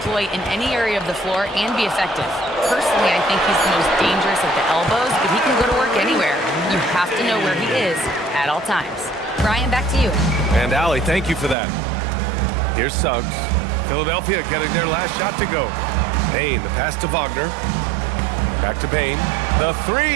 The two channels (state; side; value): drops out; left; at 11.6 s